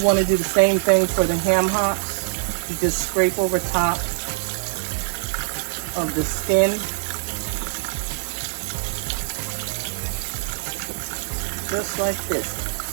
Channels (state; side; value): silent; left; 63 dB below the other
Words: want to do the same thing for the ham hocks. You just scrape over top of the skin. Just like